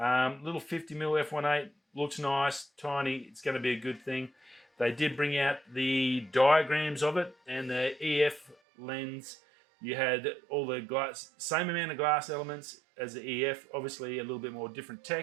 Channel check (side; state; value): left; drops out; at 8.6 s